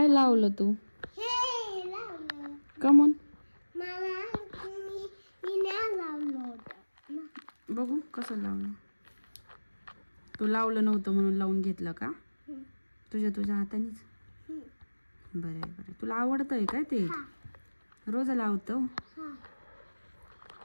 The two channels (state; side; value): inverted; both; correlation -1.00